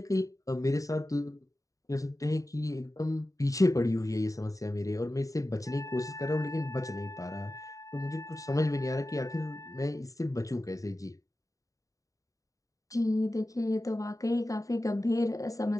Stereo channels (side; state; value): right; late; 0.16 ms